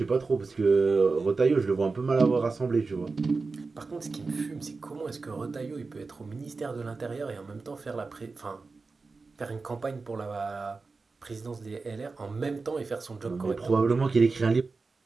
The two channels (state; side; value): quieter; left; 4.1 dB